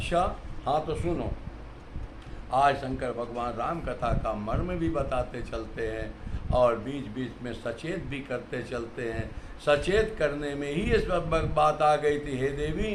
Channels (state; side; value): identical; both; correlation 1.00